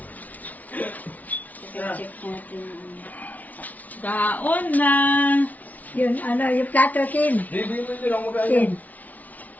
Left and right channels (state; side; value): late; right; 0.074 ms